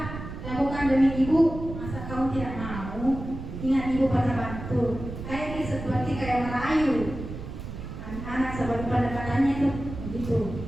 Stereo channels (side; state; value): right; noise; rumble, 9 dB below the sound